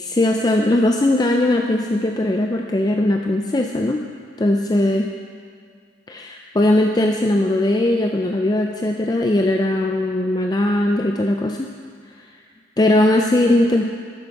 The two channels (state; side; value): normal; both; correlation 0.79